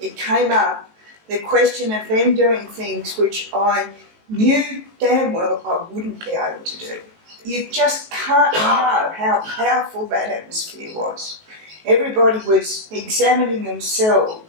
came up, the question of them doing things which I knew damn well I wouldn't be able to do. You just can't know how powerful that atmosphere was. Everybody was examining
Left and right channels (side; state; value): left; late; 19 ms